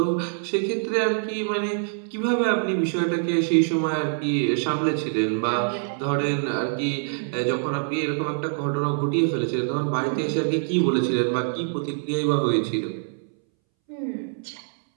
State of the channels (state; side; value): silent; left; 62 dB below the other